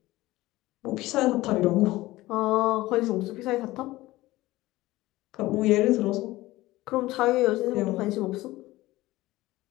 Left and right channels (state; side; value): quieter; right; 18.1 dB